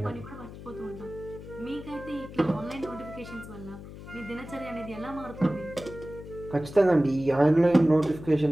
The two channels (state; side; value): noise; left; hum, 14 dB below the sound